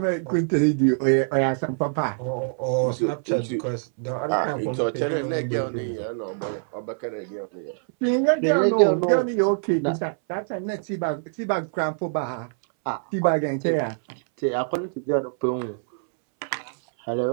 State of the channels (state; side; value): silent; left; 62 dB below the other